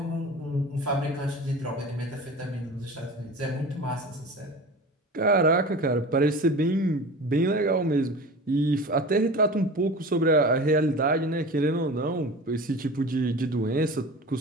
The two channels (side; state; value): both; normal; correlation 0.35